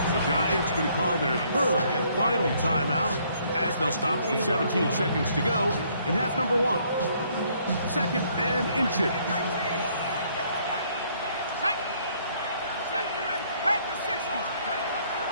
The Giants going to call their third and final timeout, as they'll stop with 17 seconds to go in half number 1. Second and inches.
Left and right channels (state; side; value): inverted; both; correlation -0.66